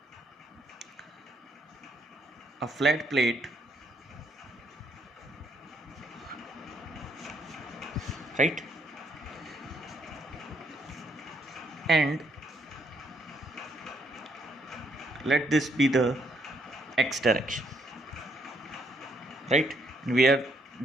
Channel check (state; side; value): normal; both; correlation 0.72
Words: a flat plate, right? And let this be the x direction, right? We are